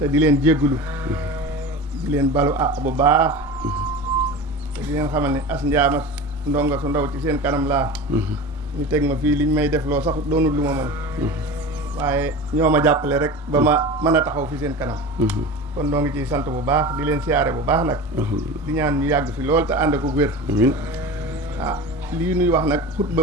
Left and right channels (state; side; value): normal; both; correlation 0.32